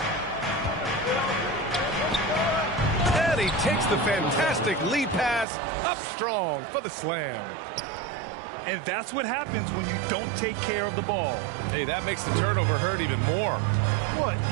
And he takes the fantastic lead pass up strong for the slam. And that's what happens when you don't take care of the ball. Hey, that makes the turnover hurt even more. What,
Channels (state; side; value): drops out; left; at 5.5 s